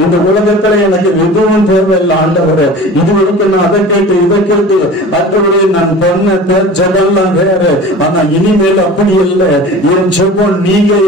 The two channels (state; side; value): normal; both; correlation 0.39